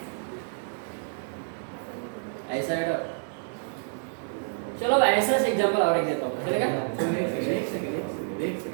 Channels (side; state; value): left; silent; 59 dB below the other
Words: ऐसा है। चलो अब ऐसा से एग्जांपल और एक देता हूँ, चलेगा? एक सेकंड